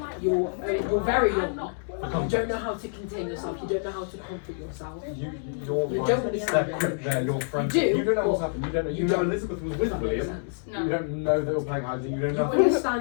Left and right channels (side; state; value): right; silent; digital silence